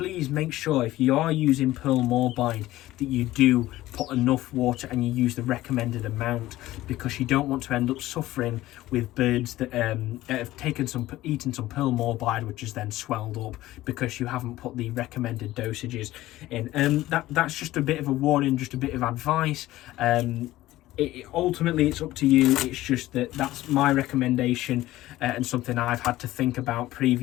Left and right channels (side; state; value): right; quieter; 16.2 dB